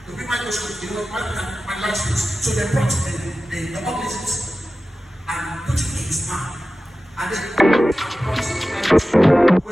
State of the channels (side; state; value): both; normal; correlation 0.95